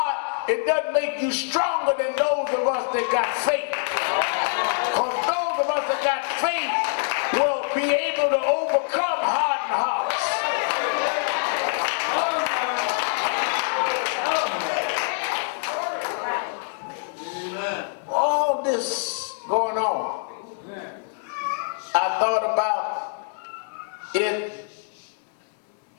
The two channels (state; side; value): silent; right; digital silence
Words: it doesn't make you stronger than those of us that got faith. Because those of us that got faith will be able to overcome hardened hearts. All this going on, I thought about it